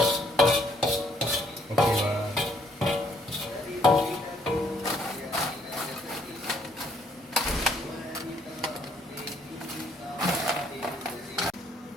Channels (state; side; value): normal; both; correlation 0.67